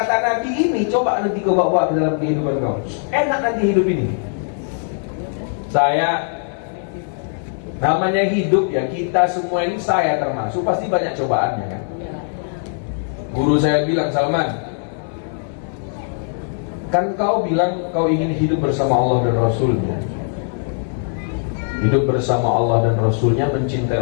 Nabi ini coba nanti kau bawa ke dalam kehidupan kau. Enak nanti hidup ini. Saya, namanya hidup ya, kita semua ini, saya termasuk, pasti banyak cobaannya kan. Guru saya bilang, Salman, kan kau bilang kau ingin hidup bersama Allah dan Rasulnya. Hidup bersama Allah dan Rasulnya, mencintai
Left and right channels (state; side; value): silent; right; digital silence